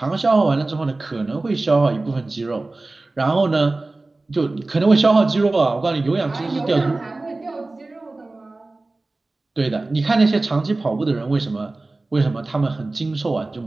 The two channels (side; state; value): left; quieter; 3.1 dB